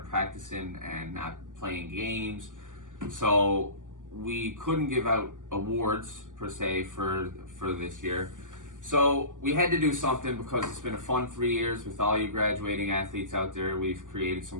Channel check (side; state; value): left; late; 0.87 ms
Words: practicing and not playing games. So we couldn't give out awards per se for this year. So we had to do something because it's been a fun 3 years with all you graduating athletes out there. We've created